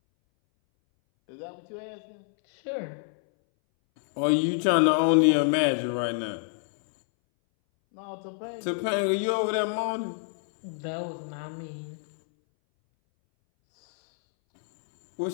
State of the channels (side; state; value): right; silent; 60 dB below the other